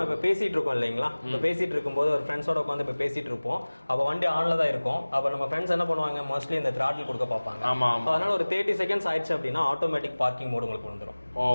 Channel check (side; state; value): both; inverted; correlation -1.00